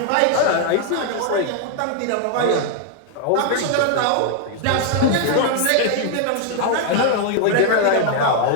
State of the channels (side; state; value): both; different; correlation 0.00